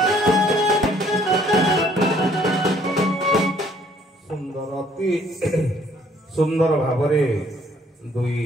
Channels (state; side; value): normal; both; correlation 0.62